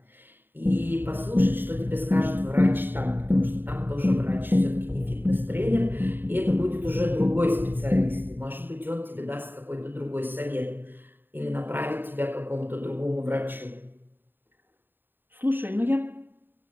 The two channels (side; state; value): left; late; 0.094 ms